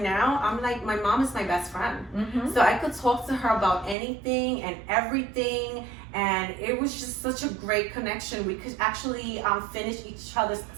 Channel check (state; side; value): drops out; left; at 4.0 s